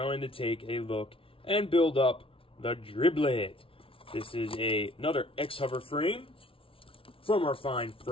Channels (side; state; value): right; late; 0.26 ms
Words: to take a look and build up the Driblet. This is another Xhover frame from our fine